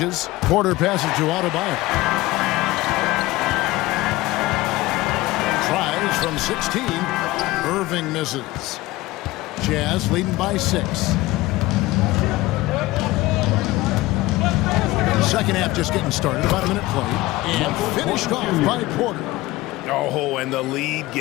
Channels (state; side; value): quieter; right; 18.9 dB